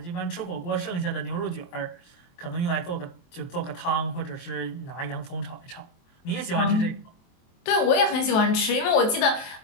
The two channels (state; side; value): late; right; 23 ms